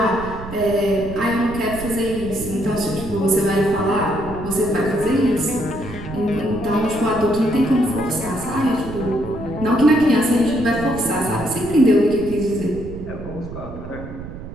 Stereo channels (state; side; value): noise; right; rumble, 11 dB below the sound